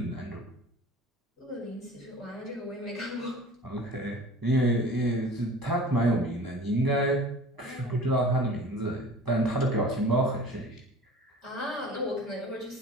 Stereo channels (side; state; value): both; normal; correlation 0.42